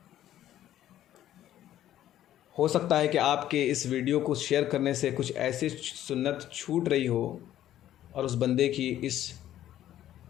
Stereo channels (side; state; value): right; quieter; 12.4 dB